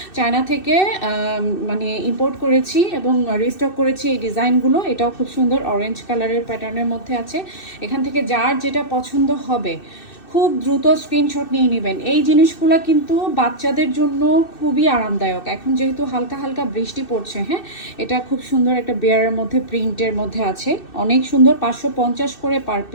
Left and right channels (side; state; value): right; late; 2.6 ms